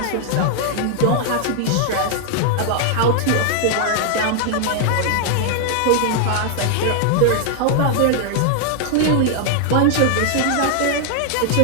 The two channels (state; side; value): different; both; correlation 0.00